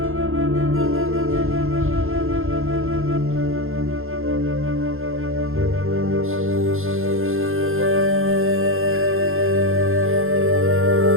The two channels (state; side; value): late; left; 0.61 ms